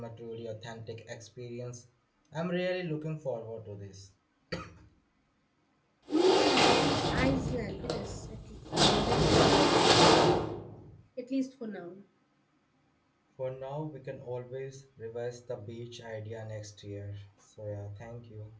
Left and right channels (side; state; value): both; identical; correlation 1.00